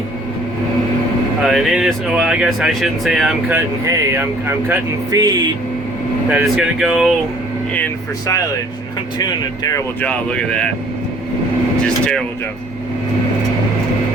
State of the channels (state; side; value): normal; both; correlation 0.56